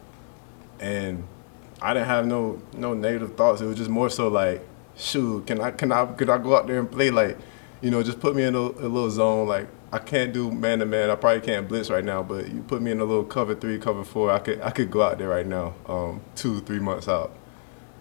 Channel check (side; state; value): right; silent; 61 dB below the other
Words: and I didn't have no negative thoughts. It was just more so like, shoot, could I go out there and play like, just put me in a little zone. Like I can't do man to man. I probably can't blitz right now, but you put me in a little cover 3, cover 4. I could go out there right now, 2, 3 months out.